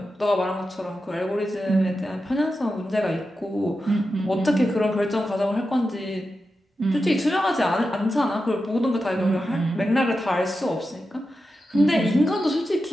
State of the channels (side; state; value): both; normal; correlation 0.90